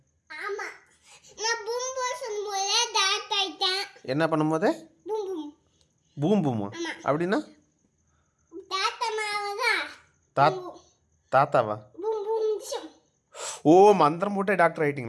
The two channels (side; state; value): both; identical; correlation 1.00